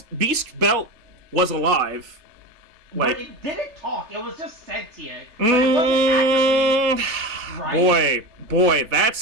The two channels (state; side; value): late; left; 4.1 ms